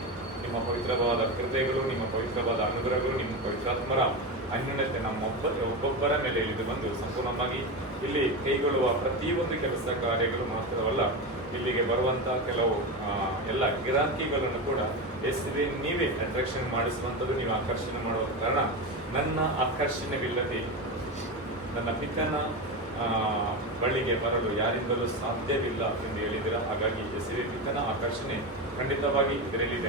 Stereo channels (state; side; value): normal; both; correlation 0.18